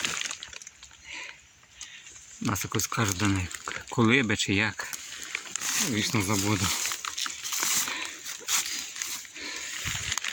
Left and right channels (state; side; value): identical; both; correlation 1.00